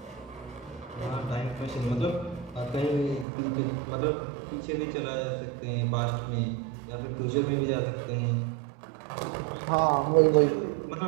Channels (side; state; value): left; drops out; at 3.2 s